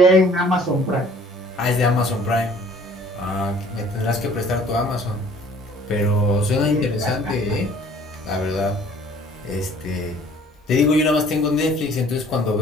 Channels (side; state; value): both; normal; correlation 0.54